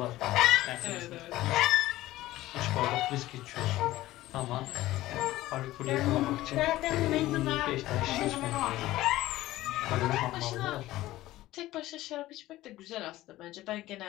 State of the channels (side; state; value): right; quieter; 16.2 dB